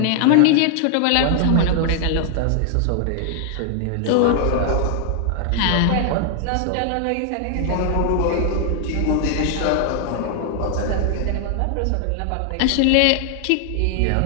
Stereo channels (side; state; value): both; different; correlation 0.00